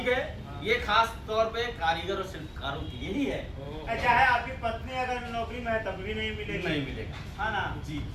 है, ये खास तौर पे कारीगर और शिल्पकारों की यही है, चाहे आपकी पत्नी अगर नौकरी में है तब भी नहीं मिलेगी। नहीं मिलेगा। हाँ ना जी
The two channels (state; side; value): identical; both; correlation 1.00